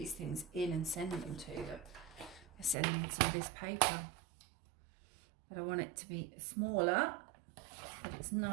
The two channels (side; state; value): left; drops out; at 2.8 s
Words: things in and send them to them. I see I need some of this paper. But I want it to be smaller, but it's